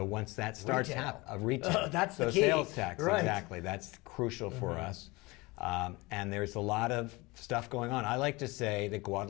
once that starts Retail. retail, That's the so key. sales tax, Right. exactly. That's crucial for us. And there's a lot of stuff going on. I like to say that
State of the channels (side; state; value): right; quieter; 23.6 dB